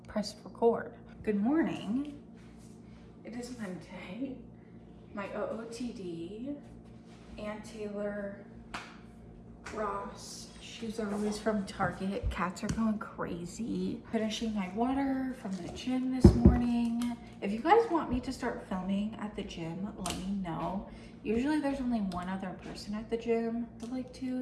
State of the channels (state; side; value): identical; both; correlation 1.00